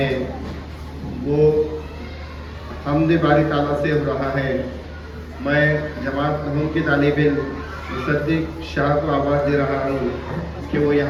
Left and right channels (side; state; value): both; identical; correlation 1.00